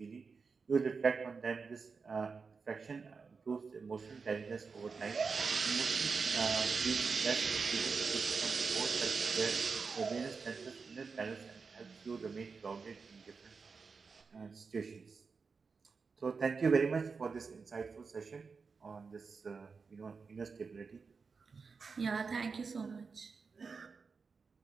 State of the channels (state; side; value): quieter; left; 4.9 dB